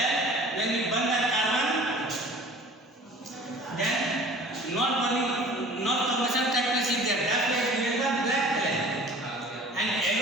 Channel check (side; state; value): both; normal; correlation 0.45